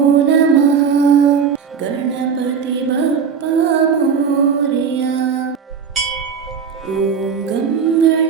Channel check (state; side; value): quieter; left; 6.6 dB